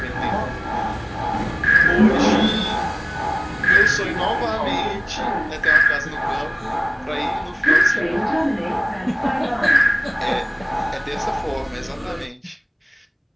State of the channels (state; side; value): identical; both; correlation 1.00